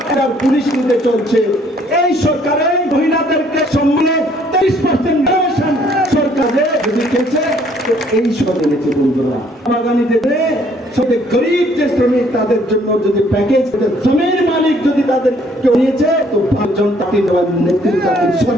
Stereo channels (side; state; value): both; normal; correlation 0.63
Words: পুলিশ নিতে চলছে। এই সরকারে মহিলাদেরকে সম্মানে 30% সরকারে দিয়েছে। তো এই সব এনেছে বন্ধুরা, বাগানি দেবে সবে গরিব যে শ্রমিক তাদের জন্য যদি প্যাকেজ, জমির মালিক যদি তাদের কেউ নিয়েছে, তো জনতা দেওয়ার নেতৃত্ব